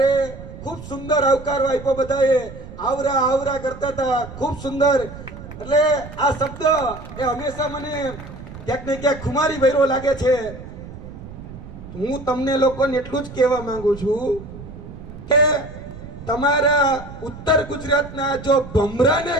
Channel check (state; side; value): noise; right; rumble, 14 dB below the sound